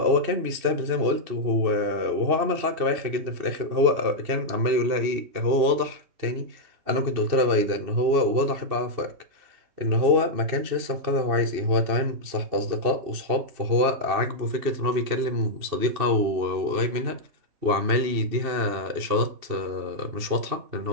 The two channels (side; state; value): left; late; 2.7 ms